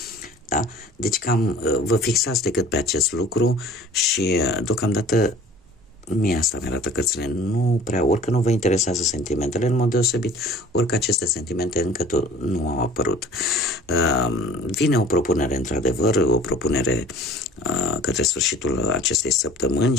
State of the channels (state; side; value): normal; both; correlation 0.47